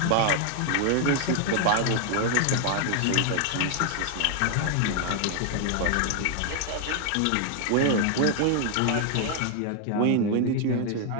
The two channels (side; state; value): both; different; correlation 0.00